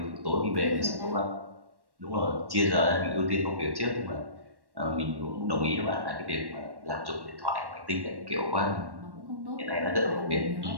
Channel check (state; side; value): late; left; 1.1 ms